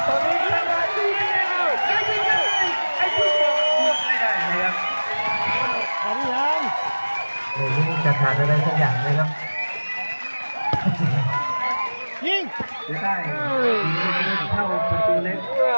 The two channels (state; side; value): inverted; both; correlation -1.00